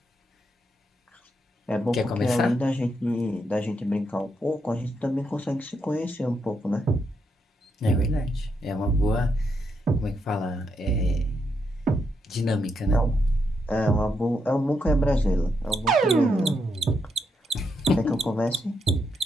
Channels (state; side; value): normal; both; correlation 0.80